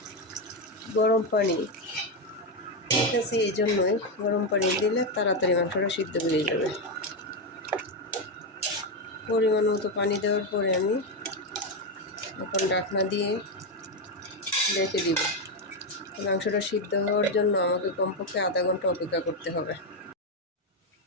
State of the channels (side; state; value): both; normal; correlation 0.07